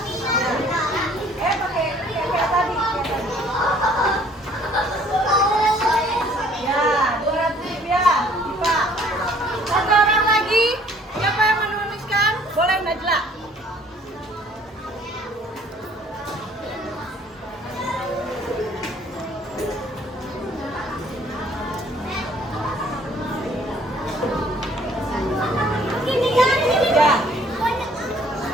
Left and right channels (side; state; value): both; normal; correlation 0.58